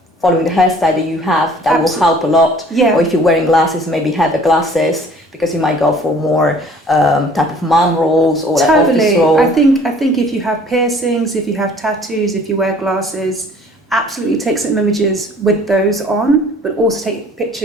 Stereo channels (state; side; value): normal; both; correlation 0.53